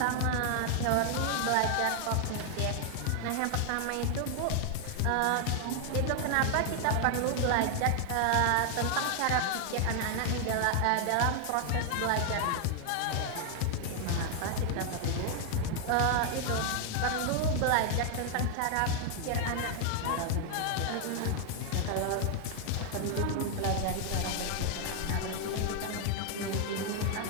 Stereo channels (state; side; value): different; both; correlation 0.00